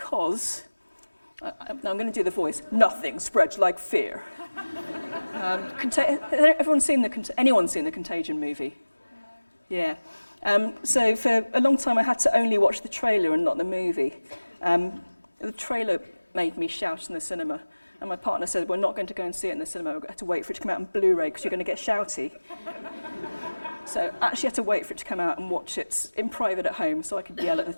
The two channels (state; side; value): inverted; both; correlation -1.00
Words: Now I'm going to do the voice. Nothing spreads like fear. Anyone seen the Contagion movie? Yeah. So for a long time I had to only watch the trailer and not the movie. The trailer made me shout in the cinema, and my partner said, we're not going to go and see it in the cinema, we're going to have to wait for it to come out on Blu-ray because you're going to get shouty. So I actually had to wait for it to come out and watch it in private at home so I could yell at the